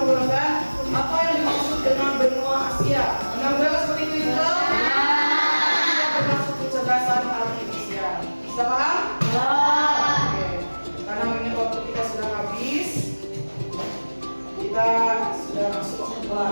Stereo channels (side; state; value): both; inverted; correlation -1.00